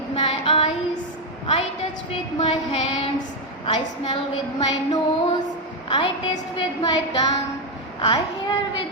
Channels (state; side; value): normal; both; correlation 0.04